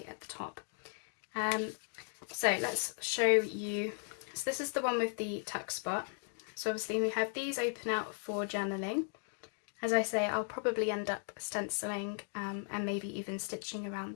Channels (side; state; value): right; silent; 53 dB below the other